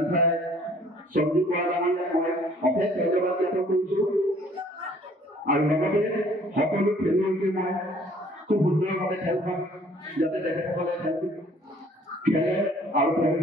সঞ্জীৱ বৰা ডাঙৰীয়াক মই অশেষ ধন্যবাদ জ্ঞাপন কৰিছোঁ আৰু লগতে সকলো খেলুৱৈকে মই খুব সুন্দৰভাৱে খেলখন যাতে তেখেতসকলে খেলে আৰু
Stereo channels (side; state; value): both; normal; correlation 0.57